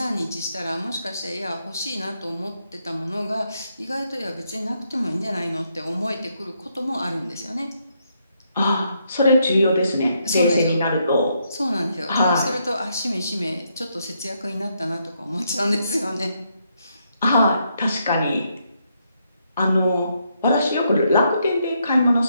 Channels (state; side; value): inverted; both; correlation -0.77